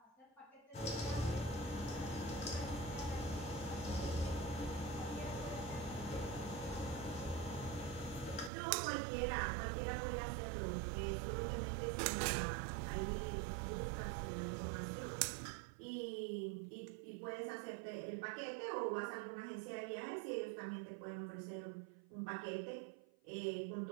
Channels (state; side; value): drops out; left; at 8.5 s